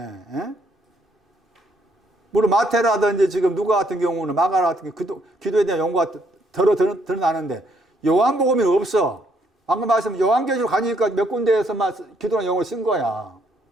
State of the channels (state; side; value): normal; both; correlation 0.70